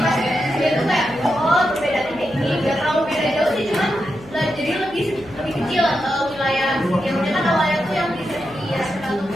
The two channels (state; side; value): noise; left; hum, 20 dB below the sound